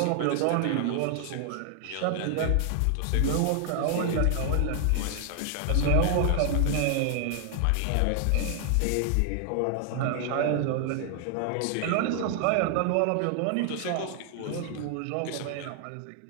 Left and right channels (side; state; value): both; different; correlation 0.00